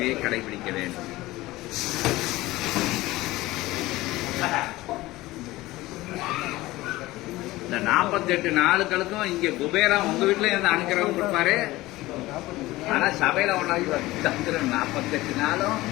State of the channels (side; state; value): right; quieter; 18.4 dB